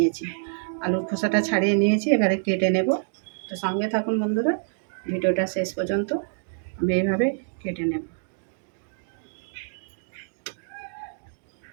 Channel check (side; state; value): left; silent; digital silence